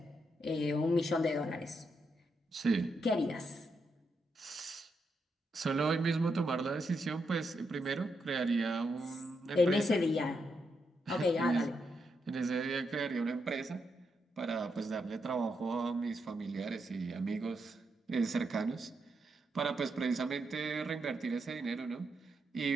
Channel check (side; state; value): both; normal; correlation 0.82